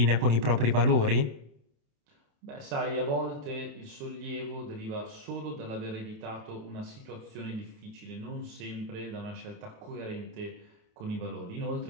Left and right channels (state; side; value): late; left; 28 ms